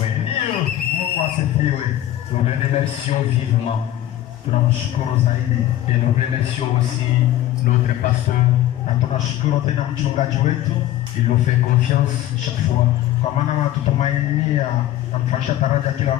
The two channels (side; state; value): right; quieter; 13.3 dB